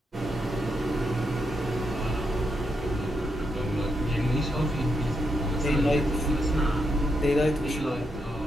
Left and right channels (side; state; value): both; normal; correlation 0.81